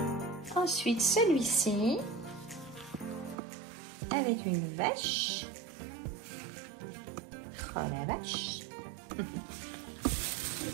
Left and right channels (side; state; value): left; drops out; at 3.4 s